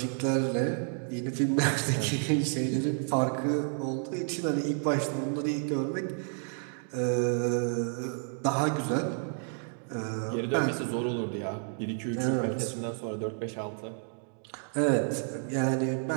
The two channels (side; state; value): left; silent; 57 dB below the other